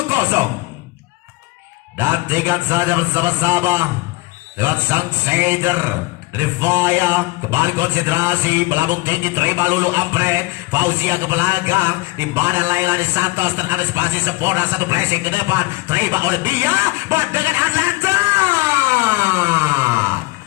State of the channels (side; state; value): right; quieter; 22.7 dB